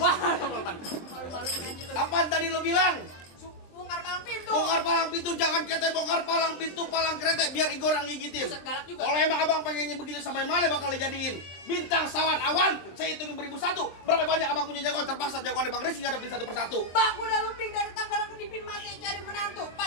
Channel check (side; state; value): right; late; 23 ms